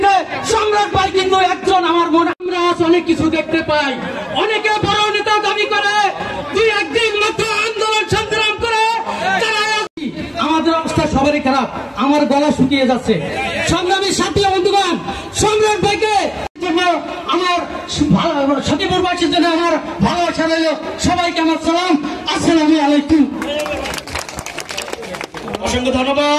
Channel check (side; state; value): both; identical; correlation 1.00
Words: সম্রাট ভাই কিন্তু একজন। আমার মনে আমরা অনেক কিছু দেখতে পাই, অনেকে বড় নেতা দাবি করে, দুই একদিন মাত্র আন্দোলন সংগ্রাম করে আমাদের অবস্থা সবারই খারাপ। আমার গলা শুকিয়ে যাচ্ছে। সংগ্রামী সাথী বন্ধুগণ, সম্রাট ভাইকে জন্য আমার সখীপুরবাসীর জন্য আমার ভালোবাসা রইল। সবাইকে আমার সালাম, আসসালামু আলাইকুম। অসংখ্য